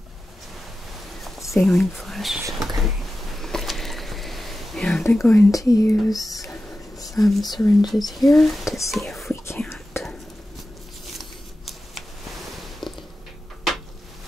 saline flush. Okay. And I'm going to use some syringes here to see if we can't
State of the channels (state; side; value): normal; both; correlation 0.93